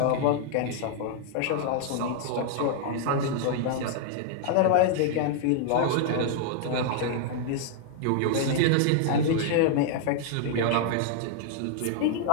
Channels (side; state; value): both; different; correlation -0.01